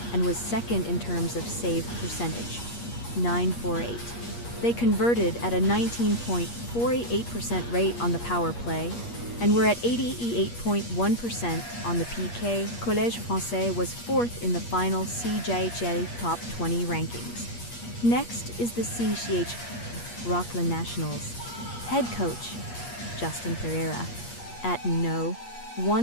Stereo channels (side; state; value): right; late; 8.4 ms